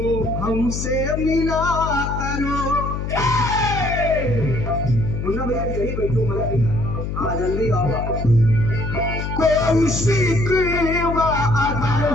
हमसे मिला करो। मुन्ना भैया यही बैठो, मजा हाँ जल्दी आओ। कोई शिकवा अगर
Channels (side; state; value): left; noise; hum, 4 dB below the sound